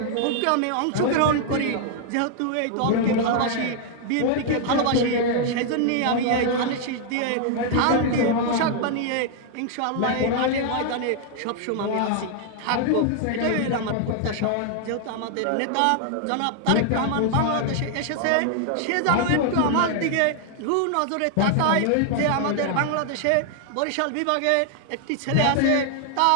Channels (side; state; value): both; different; correlation 0.00